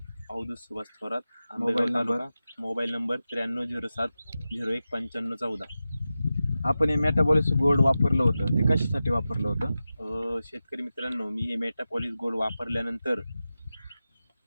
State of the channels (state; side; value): inverted; both; correlation -0.93